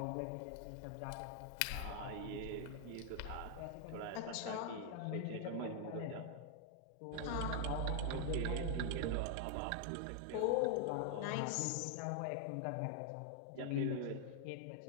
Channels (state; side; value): different; both; correlation 0.00